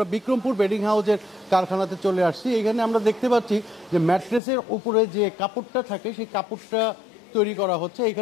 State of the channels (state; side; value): drops out; right; at 4.4 s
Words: বিক্রমপুর বেডিং হাউসের কারখানাতে চলে আসছি। এখানে আমরা দেখতে পাচ্ছি যে ম্যাট্রেসের উপরে যে কাপড়টা থাকে সেই কাপড়টা তৈরি করা হচ্ছে।